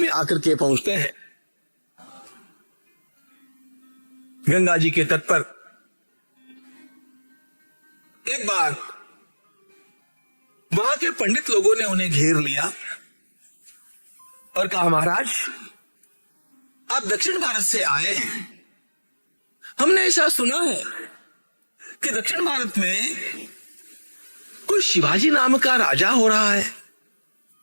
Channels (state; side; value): inverted; both; correlation -1.00